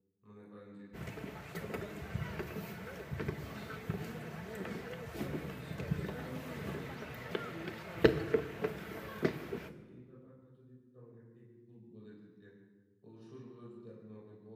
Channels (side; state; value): both; identical; correlation 1.00